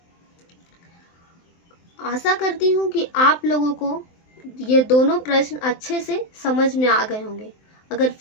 आशा करती हूँ कि आप लोगों को ये दोनों प्रश्न अच्छे से समझ में आ गए होंगे। अगर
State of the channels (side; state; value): right; late; 23 ms